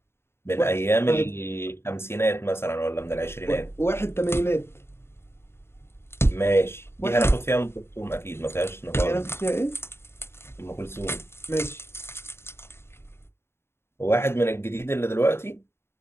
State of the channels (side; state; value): right; late; 0.12 ms